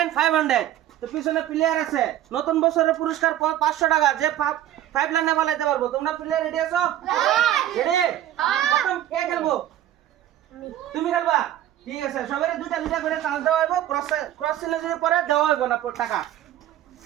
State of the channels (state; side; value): quieter; left; 12.4 dB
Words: 500। তো পিছনে প্লেয়ার আছে। নতুন বছরের পুরস্কার 500 টাকা। যে 5 লাইনে ফলাইতে পারবো। তোমরা প্লেয়ার রেডি আছো? রেডি? প্রথম কে খেলবো? তুমি খেলবা? ঠিক আছে, সবাই দুইটা দুইটা করে চান্স দেওয়া হইব। ক্রস চিহ্ন যদি পরে দেওয়া হইব না টাকা।